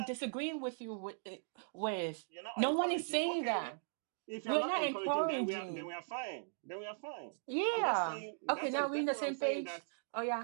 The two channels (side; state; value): left; silent; digital silence